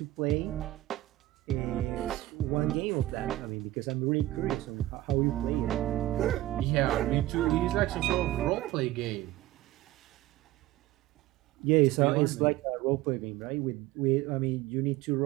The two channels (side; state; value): left; quieter; 16.1 dB